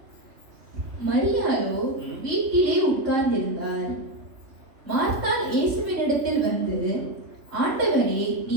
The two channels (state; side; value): late; left; 3.7 ms